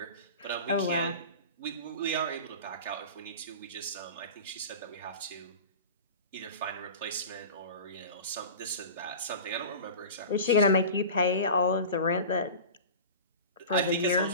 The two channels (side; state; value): both; inverted; correlation -0.33